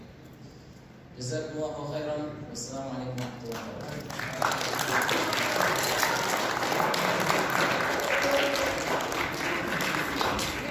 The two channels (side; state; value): both; identical; correlation 1.00